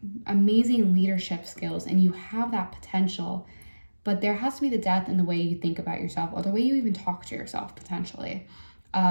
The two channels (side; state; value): both; inverted; correlation -1.00